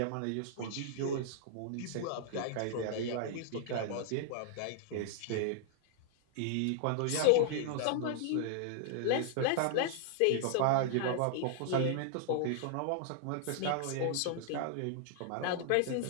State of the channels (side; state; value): both; different; correlation -0.01